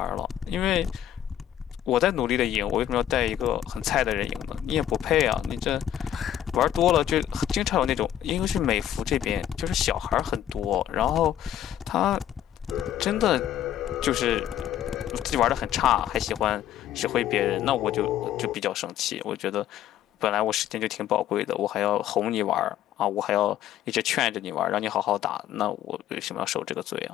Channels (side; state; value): right; quieter; 11.3 dB